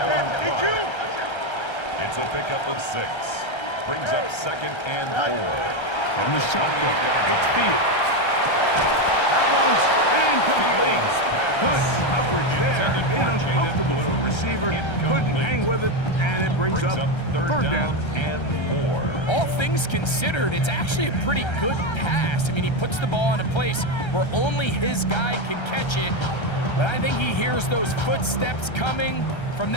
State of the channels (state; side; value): late; right; 1.3 ms